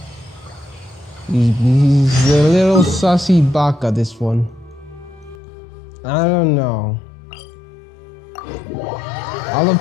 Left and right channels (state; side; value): drops out; right; at 5.4 s